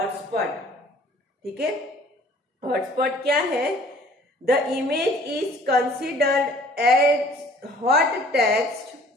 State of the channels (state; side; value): normal; both; correlation 0.53